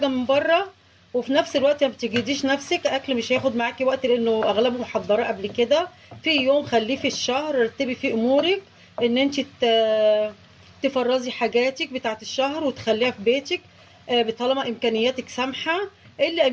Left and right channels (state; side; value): identical; both; correlation 1.00